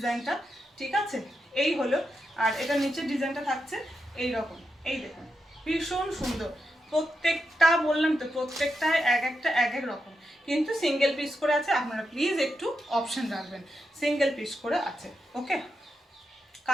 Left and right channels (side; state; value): both; normal; correlation 0.86